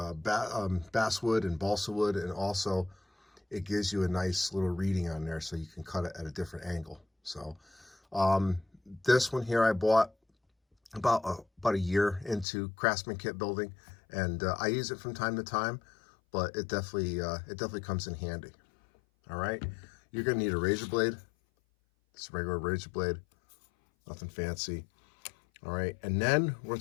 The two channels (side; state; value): right; drops out; at 12.5 s